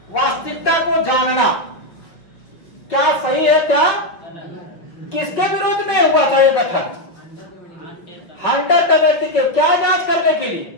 वास्तविकता को जानना, क्या सही है क्या? किसके विरोध में हुआ था ये गठन? हंटर कमेटी के क्या जांच करने के लिए?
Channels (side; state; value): right; late; 5.8 ms